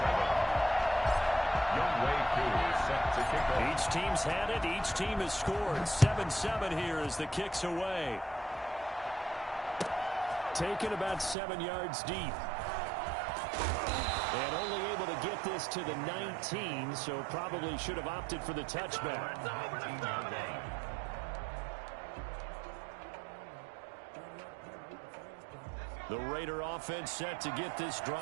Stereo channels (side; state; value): left; drops out; at 11.4 s